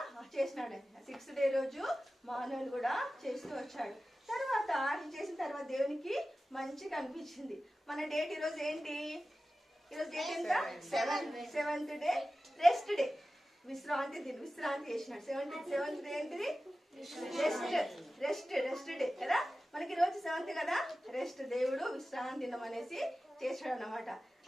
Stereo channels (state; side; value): normal; both; correlation 0.95